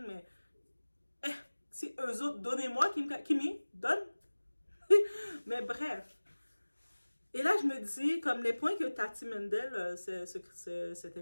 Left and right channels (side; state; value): both; inverted; correlation -1.00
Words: mais si eux autres, donnez-moi Kimi, donne. Mais bref. Et là, je me dis, comme les points que Tati Mendel, cet